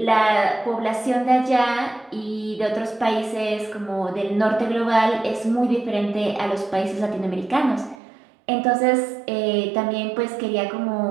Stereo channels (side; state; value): left; drops out; at 8.0 s